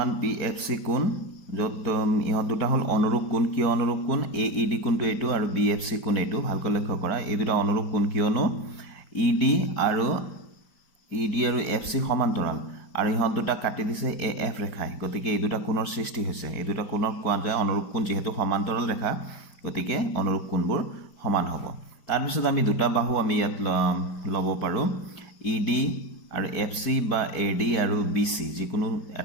বি এফ চি কোণ, য'ত ইহঁত দুটা হ'ল অনুৰূপ কোণ। কিয় অনুৰূপ কোণ? এ ই ডি কোণটো এইটো আৰু বি এফ চি কোণ এইটো। ভালকৈ লক্ষ্য কৰা, এই দুটা অনুৰূপ কোণ কিয়নো ই ডি আৰু এফ চি সমান্তৰাল আৰু ইহঁত দুটা কাটি দিছে এ এফ ৰেখাই, গতিকে এই দুটা কোণৰ সৃষ্টি হৈছে। এই দুটা কোণক কোৱা যায় অনুৰূপ কোণ, যিহেতু সমান্তৰাল ৰেখা গতিকে অনুৰূপ কোণবোৰ সমান হ'ব। তাৰপিছত আমি দুটা বাহু আমি ইয়াত ল'ব পাৰোঁ, ই ডি আৰু এফ চি বা এ ডি আৰু বি চি, যিকোনো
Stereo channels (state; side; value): late; right; 5.0 ms